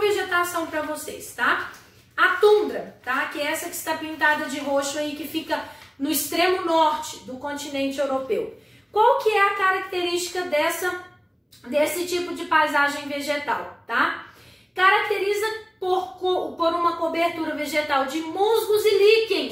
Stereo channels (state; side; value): identical; both; correlation 1.00